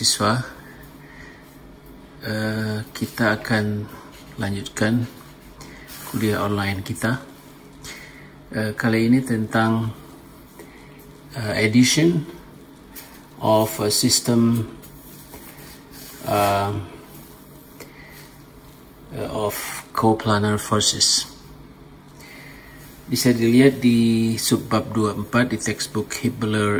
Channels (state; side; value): identical; both; correlation 1.00